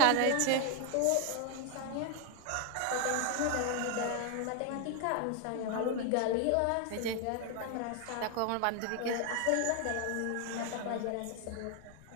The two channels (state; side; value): different; both; correlation 0.01